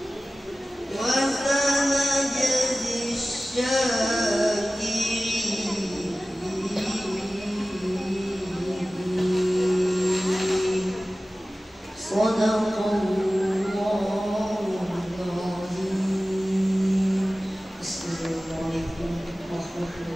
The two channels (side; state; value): both; normal; correlation 0.96